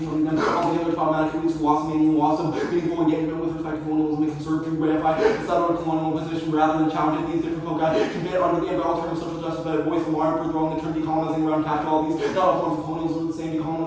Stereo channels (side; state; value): both; identical; correlation 1.00